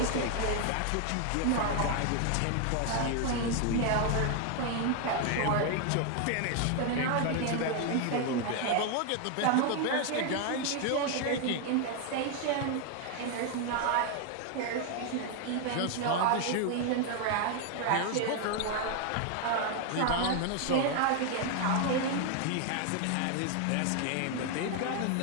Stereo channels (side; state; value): both; different; correlation 0.01